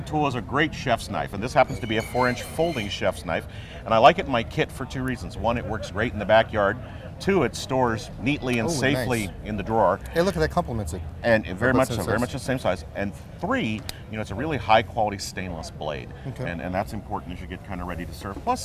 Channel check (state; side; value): identical; both; correlation 1.00